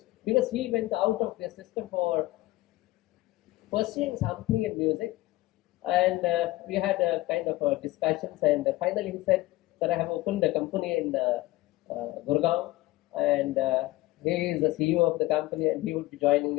because he went out of the system for pursuing something in music. And we had a kind of discussions. And finally he said that I have opened a company in Gurgaon. And he is the CEO of the company and he would be joining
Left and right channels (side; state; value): right; quieter; 18.3 dB